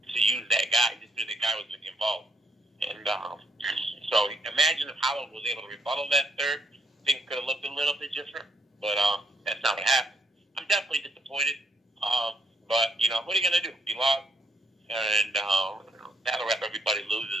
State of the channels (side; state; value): both; normal; correlation 0.72